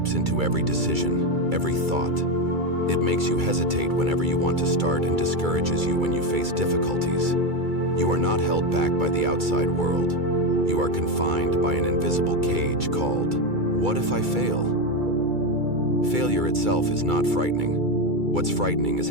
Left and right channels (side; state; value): left; late; 2.3 ms